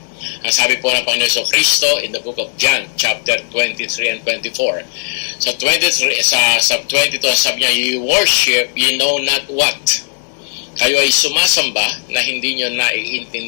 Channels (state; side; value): silent; right; digital silence